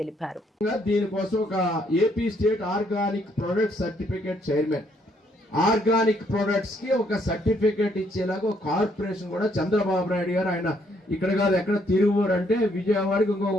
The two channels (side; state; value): both; normal; correlation 0.70